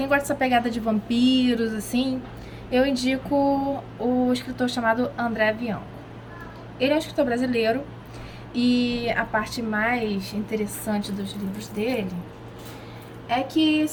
gosta dessa pegada de vampiros, assim, eu indico o escritor chamado André Bianco. Ele é um escritor brasileiro e a parte mais interessante dos livros dele é que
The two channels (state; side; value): identical; both; correlation 1.00